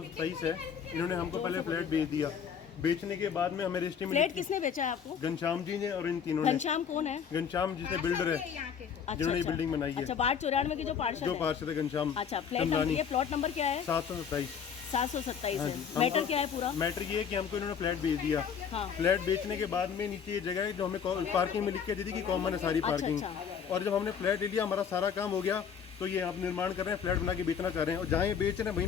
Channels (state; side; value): quieter; right; 7.3 dB